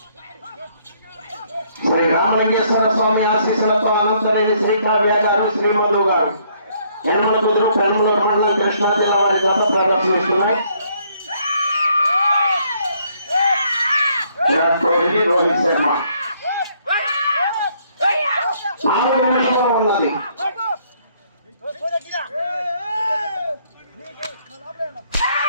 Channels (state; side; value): inverted; both; correlation -0.67